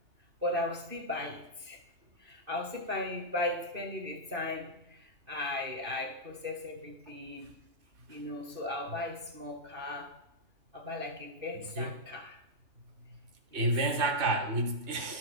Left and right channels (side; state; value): left; late; 2.6 ms